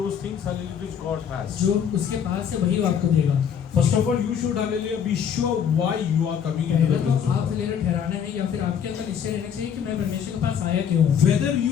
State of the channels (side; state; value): right; quieter; 8.0 dB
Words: those things, hallelujah, which God has. जो उसके पास है वही वो आपको देगा. First of all, you should, hallelujah, be sure why you are coming into पहले the तो presence of आप God. लेकर ठहराना है या फिर आपके अंदर निश्चय रहना चाहिए कि मैं परमेश्वर के पास आया क्यों हूँ. Whether